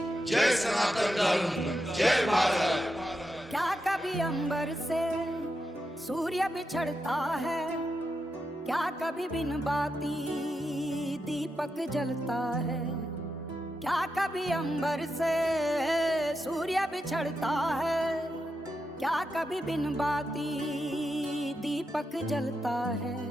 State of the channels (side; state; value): both; normal; correlation 0.87